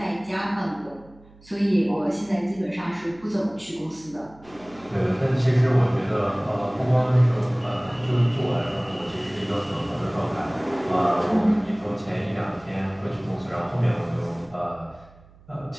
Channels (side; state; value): right; noise; hum, 25 dB below the sound